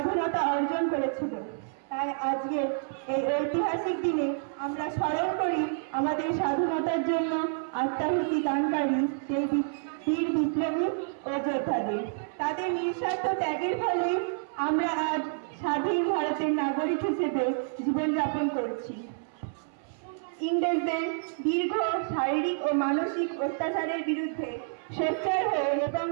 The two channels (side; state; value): left; silent; 59 dB below the other